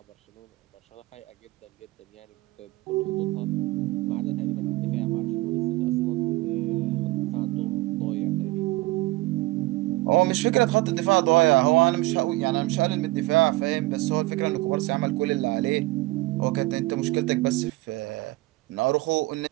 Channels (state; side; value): quieter; left; 20.1 dB